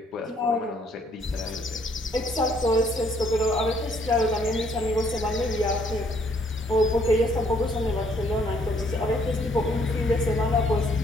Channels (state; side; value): normal; both; correlation 0.66